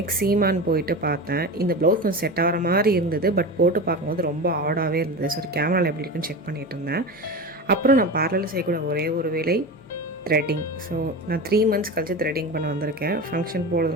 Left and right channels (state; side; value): normal; both; correlation 0.26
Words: சீமான் போயிட்டு பார்த்தேன். இந்த ப்ளவுஸ் கொஞ்சம் செட் ஆகிற மாதிரி இருந்தது, பட் போட்டு பார்க்கும்போது ரொம்ப ஆடாகவே இருந்தது. ஸோ கேமராவில் எப்படி இருக்குன்னு செக் பண்ணிகிட்டு இருந்தேன். அப்புறம் நான் பார்லரில் செய்யக்கூட ஒரே ஒரு வேலை த்ரெட்டிங். ஸோ நான் 3 months கழிச்சு த்ரெட்டிங் பண்ண வந்திருக்கேன். ஃபங்க்ஷன்